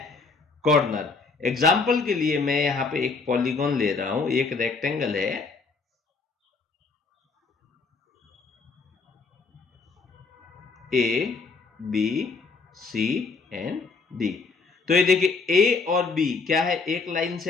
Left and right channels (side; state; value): right; quieter; 4.3 dB